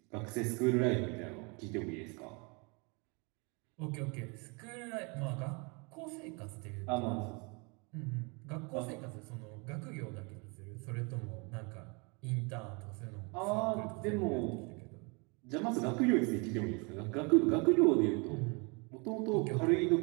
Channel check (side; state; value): left; quieter; 31.2 dB